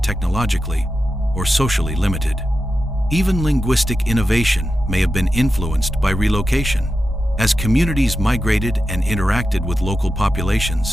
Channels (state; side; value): normal; both; correlation 0.90